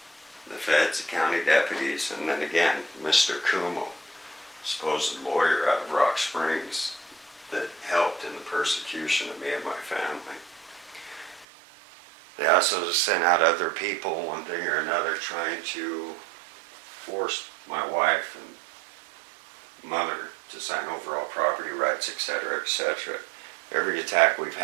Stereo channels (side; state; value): left; drops out; at 11.5 s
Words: The feds, the county deputies, and then again, Mr. Kumo, supposed lawyer out of Rock Springs that helped in the persecution of me and my family. They also sent out other people, one thing or another, trying to force my wife and mother to sign overall property rights, etc., etc. Every attack we've